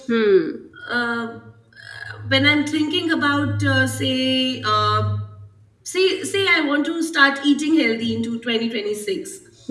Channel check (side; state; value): both; identical; correlation 1.00